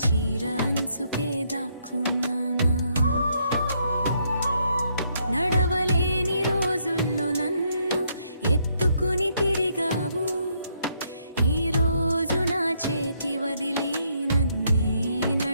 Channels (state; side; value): inverted; both; correlation -0.73